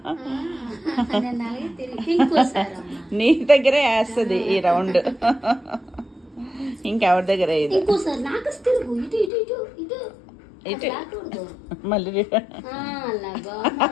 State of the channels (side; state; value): right; drops out; at 9.3 s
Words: నీ దగ్గరే వేస్తుంది ఈ రౌండ్, ఇంకెవరి దగ్గర ఇది. ఇటు మళ్ళీ